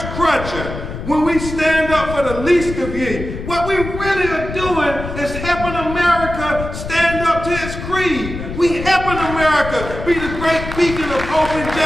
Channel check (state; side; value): noise; left; rumble, 8 dB below the sound